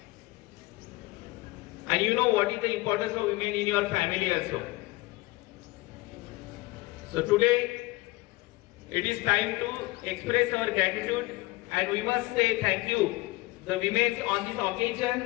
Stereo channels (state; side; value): quieter; right; 21.1 dB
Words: And you know what is the importance of women in your family also. So today, it is time to express our gratitude and we must say thank you, the women on this